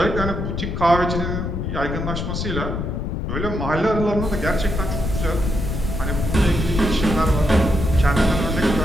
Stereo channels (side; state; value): left; noise; rumble, 3 dB below the sound